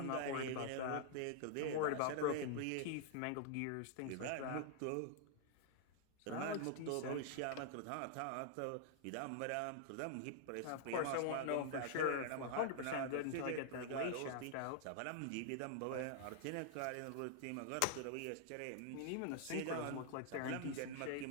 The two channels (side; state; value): both; different; correlation -0.01